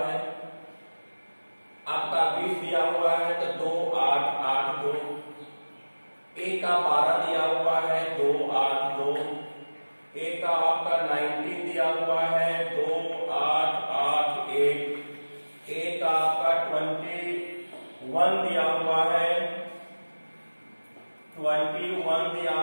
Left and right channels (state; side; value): inverted; both; correlation -1.00